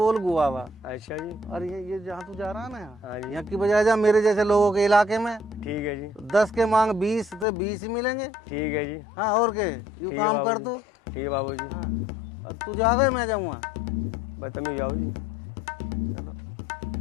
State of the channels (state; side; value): drops out; right; at 7.5 s